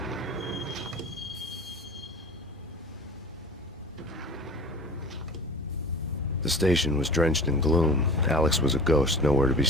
The station was drenched in gloom. Alex was a ghost, nowhere to be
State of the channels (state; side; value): normal; both; correlation 0.39